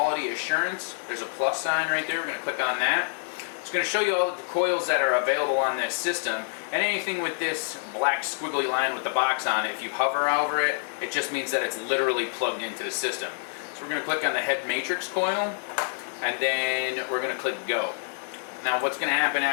Assurance. There's a plus sign right there. We're going to click on that. It's going to show you all of the coils that are available on this system, and anything with this black squiggly line with the box on it, if you hover over it, it just means that it's literally plugged into the system. So we're going to click on the head matrix coil, and then we're going to click Go. Now what's going to happen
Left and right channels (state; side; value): silent; right; digital silence